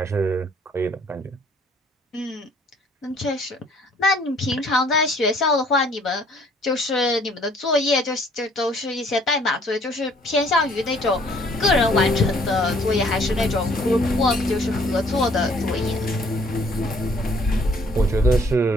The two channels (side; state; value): both; normal; correlation 0.60